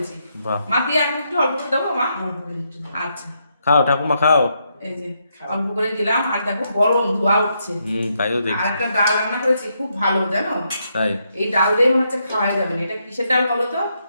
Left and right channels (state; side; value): inverted; both; correlation -0.79